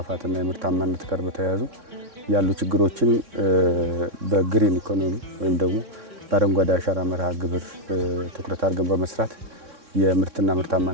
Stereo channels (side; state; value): left; late; 3.6 ms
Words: የምርታማነት ጋር በተያያዙ ያሉ ችግሮችን በግሪን ኢኮኖሚ ወይም ደግሞ በአረንጓዴ አሻራ መርሃ ግብር ትኩረት አድርገን በመስራት የምርትና